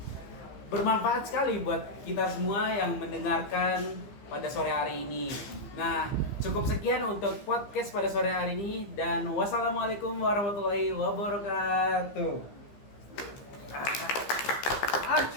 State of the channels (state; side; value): late; right; 15 ms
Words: bermanfaat sekali buat kita semua yang mendengarkan pada sore hari ini. Nah, cukup sekian untuk podcast pada sore hari ini dan wassalamualaikum warahmatullahi wabarakatuh.